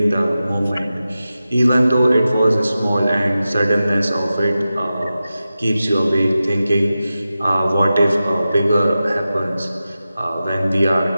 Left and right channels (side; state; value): both; inverted; correlation -0.93